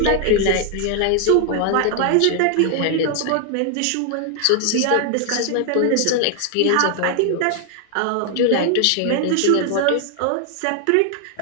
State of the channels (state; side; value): different; both; correlation 0.00